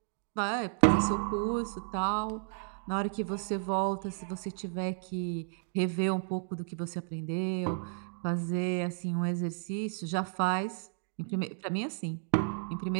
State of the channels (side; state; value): left; silent; digital silence